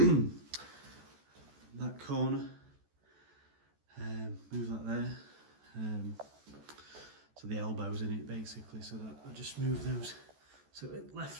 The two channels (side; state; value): left; late; 14 ms